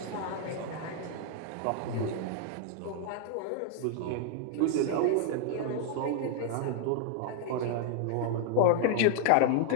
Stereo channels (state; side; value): different; both; correlation 0.00